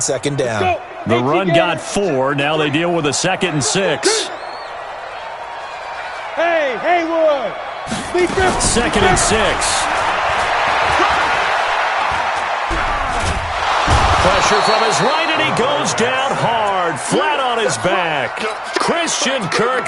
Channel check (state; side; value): identical; both; correlation 1.00